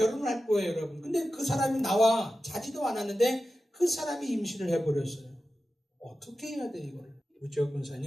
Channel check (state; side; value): normal; both; correlation 0.93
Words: 할 거예요, 여러분. 근데 그 사람이 나와 자지도 않았는데 그 사람이 임신을 해버렸어요. 어떻게 해야 돼, 이걸? 우지혁